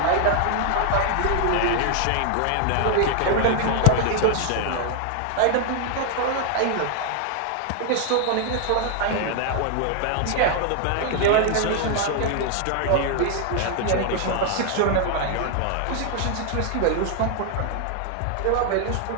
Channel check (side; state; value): both; different; correlation 0.00